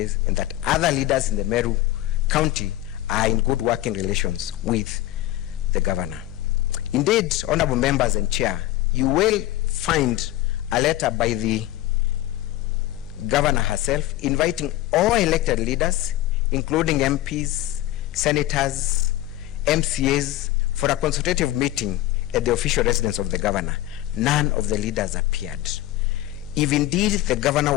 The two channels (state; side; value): quieter; right; 15.3 dB